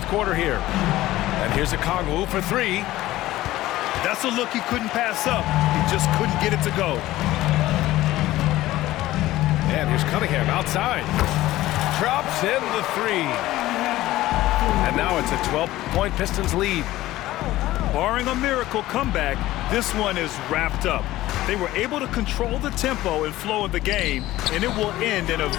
quarter here. And here's Okongwu for 3. That's a look he couldn't pass up. He just couldn't get it to go. And here's Cunningham outside. Drops in the 3. And now it's a 12-point Pistons lead. Barring a miracle comeback, this one is wrapped up. They were able to control the tempo and flow of the game, and it will end in a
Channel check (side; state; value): right; quieter; 16.2 dB